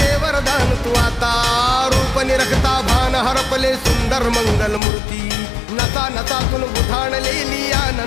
तू आता रूप निरखता भान हरपले सुंदर मंगल मूर्ती नसा नसातून उधाणलेली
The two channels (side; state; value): right; drops out; at 4.8 s